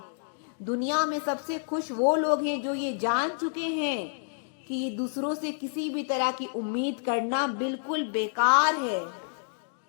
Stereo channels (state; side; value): silent; right; digital silence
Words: दुनिया में सबसे खुश वो लोग हैं जो ये जान चुके हैं कि ये दूसरों से किसी भी तरह की उम्मीद करना बिल्कुल बेकार है।